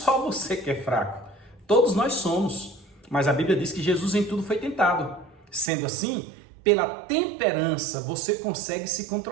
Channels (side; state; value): left; drops out; at 5.7 s